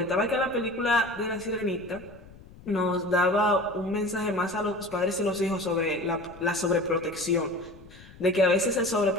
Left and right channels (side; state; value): left; noise; rumble, 21 dB below the sound